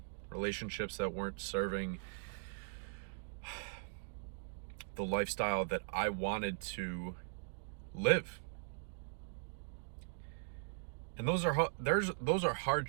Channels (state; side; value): silent; left; digital silence